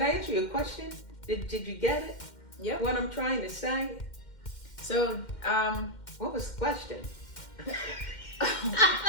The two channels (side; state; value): right; late; 2.1 ms